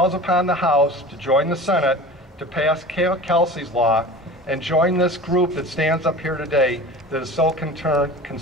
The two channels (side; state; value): both; normal; correlation 0.37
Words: upon the House to join the Senate to pass Kelsey's law and join this group that stands up here today that is so